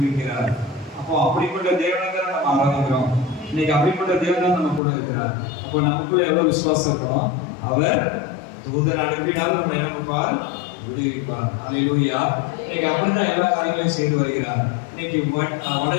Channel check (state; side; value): drops out; right; at 4.8 s